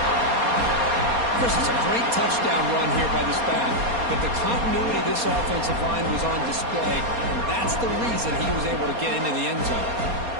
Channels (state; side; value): late; left; 4.2 ms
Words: Chris, it's a great touchdown run here by this back, but the continuity of this offensive line was on display, and that's the reason he was able to get into the end zone.